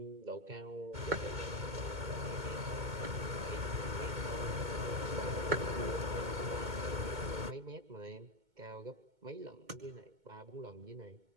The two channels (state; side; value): late; left; 2.2 ms